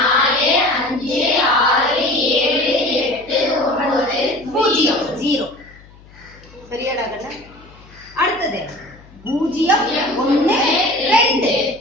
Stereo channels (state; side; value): noise; left; hum, 24 dB below the sound